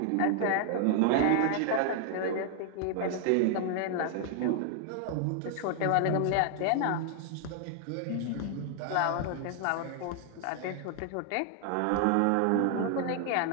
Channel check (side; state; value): both; different; correlation 0.00